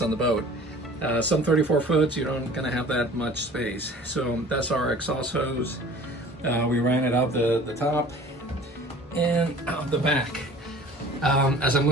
on the boat. Some 34 foots, you don't gonna have that much space. So that's our exhaust hose. We ran it out the top and out the back. As I'm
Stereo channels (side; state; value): both; normal; correlation 0.46